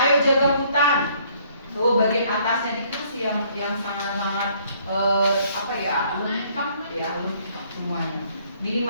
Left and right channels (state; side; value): inverted; both; correlation -0.63